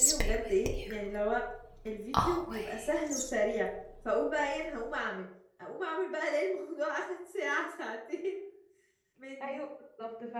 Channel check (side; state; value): both; identical; correlation 1.00